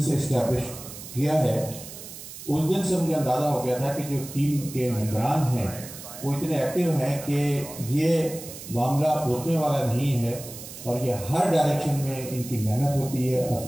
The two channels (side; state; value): right; noise; hiss, 13 dB below the sound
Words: से इस्टेब्लिश किया है उस दिन से मुझे अंदाज़ा हो गया था कि जो टीम के मेंबरान हैं वो इतने एक्टिव हैं कि ये मामला रुकने वाला नहीं है और ये हर डायरेक्शन में इनकी मेहनत होती है।